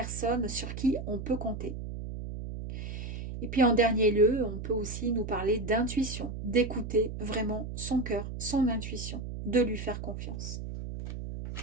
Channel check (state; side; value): noise; right; hum, 7 dB below the sound